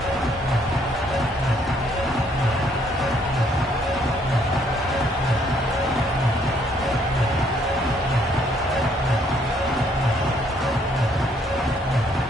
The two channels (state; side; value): normal; both; correlation 0.67